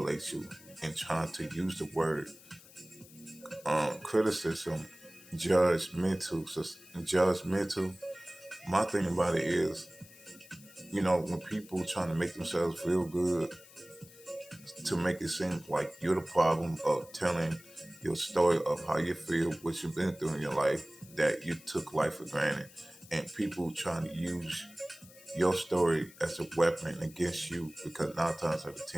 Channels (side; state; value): left; noise; hiss, 21 dB below the sound